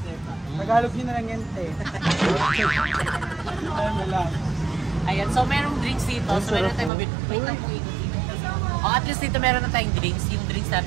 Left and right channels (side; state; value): left; drops out; at 6.9 s